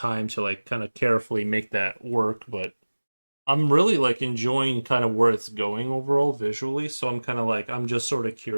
to like kind of carefully make that work, but I'm really like enjoying kind of where it's going overall visually, so I'm kind of like I'm just sort of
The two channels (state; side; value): inverted; both; correlation -1.00